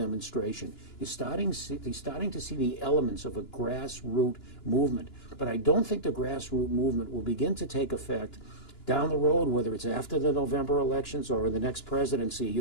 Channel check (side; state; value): right; late; 2.9 ms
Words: You're starting to see the elements of a grassroots movement, but I don't think the grassroots movement will begin to take effect down the road, whether it's after the November elections or in the next presidency.